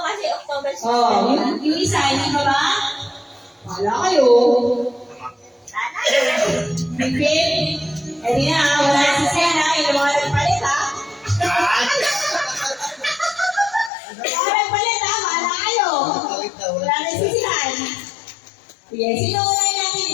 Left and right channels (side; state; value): right; drops out; at 13.9 s